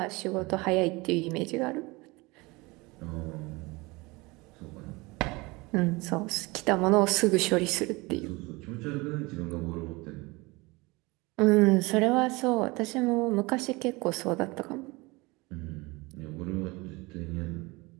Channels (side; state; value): left; quieter; 24.1 dB